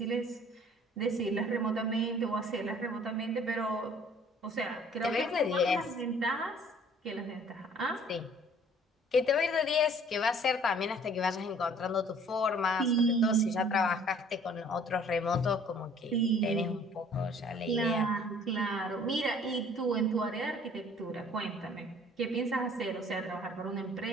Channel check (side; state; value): both; normal; correlation 0.54